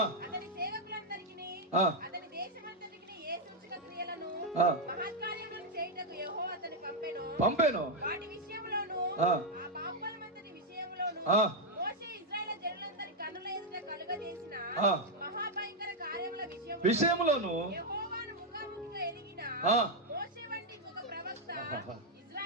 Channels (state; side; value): normal; both; correlation 0.00